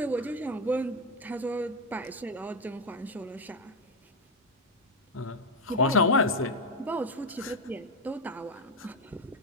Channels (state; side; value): normal; both; correlation 0.08